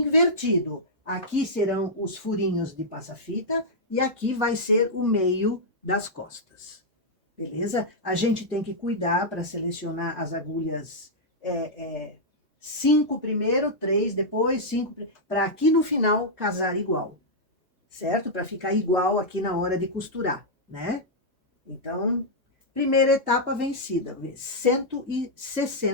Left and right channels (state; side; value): normal; both; correlation -0.07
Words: Aqui serão os furinhos de passa-fita e aqui vai ser o meio das costas. Beleza? A gente tem que cuidar para selecionar as agulhas 5 primeiro, 3 depois, 5, para aqui no final casar igual, certo? Para ficar igual aqui na hora de costurar, né? Então, primeira etapa vencida,